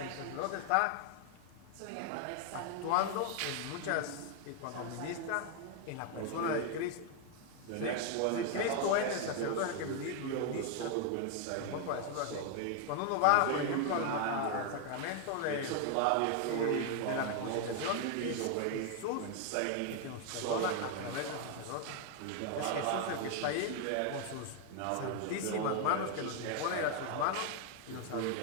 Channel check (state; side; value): different; both; correlation 0.00